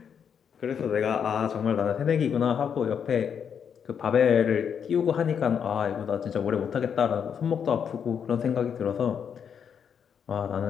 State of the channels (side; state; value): right; quieter; 7.5 dB